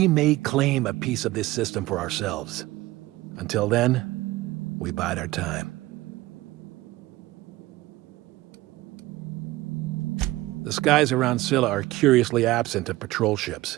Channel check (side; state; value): left; quieter; 18.2 dB